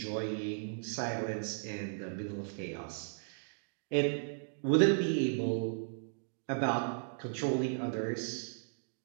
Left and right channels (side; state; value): left; silent; digital silence